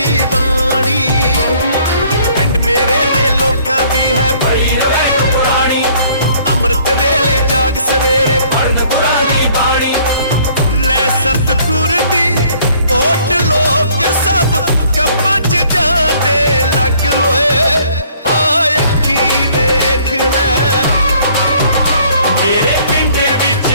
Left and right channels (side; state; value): both; inverted; correlation -0.59